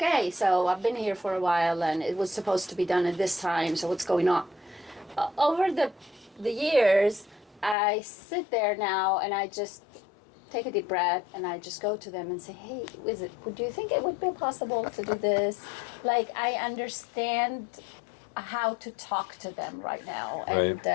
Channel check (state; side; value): drops out; right; at 7.8 s